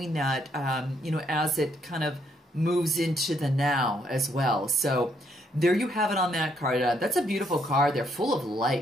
that, you know, as it kind of moves into the now as well. So there you have it on that card. That's a beautiful card. They're full of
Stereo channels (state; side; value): normal; both; correlation 0.72